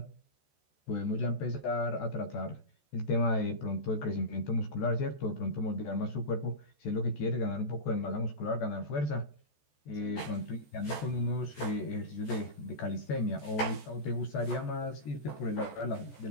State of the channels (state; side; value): late; right; 14 ms